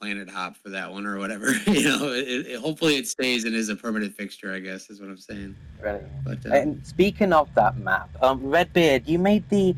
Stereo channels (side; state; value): both; identical; correlation 1.00